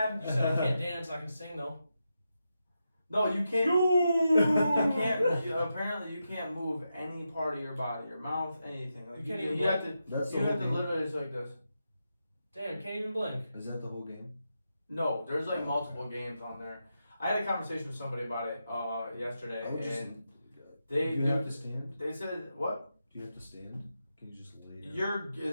You said I can't dance, I can sing though. No, you can't. You can't. Apparently, you can't move any part of your body, your mouth, anything. Like, You can't even You have to. That's the You whole have to game. literally just like this. Damn, can't even blink. Is that the whole game? No, there's like multiple games on there. I had a conversation with somebody about it yesterday, I would just- and they Do you have to stand? they said what? Do you have to stand? Can you just lay down?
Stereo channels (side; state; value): both; inverted; correlation -0.87